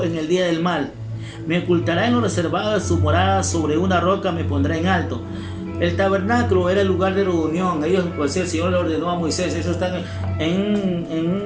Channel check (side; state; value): both; identical; correlation 1.00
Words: en el día del mal, me ocultará en lo reservado de su morada, sobre una roca me pondrá en alto. El tabernáculo era el lugar de reunión. Ellos, pues el Señor le ordenó a Moisés. Eso está